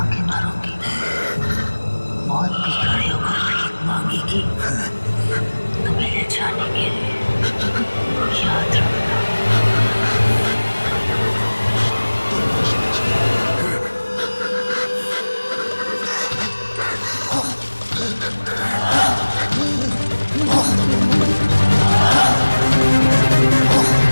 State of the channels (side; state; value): both; inverted; correlation -1.00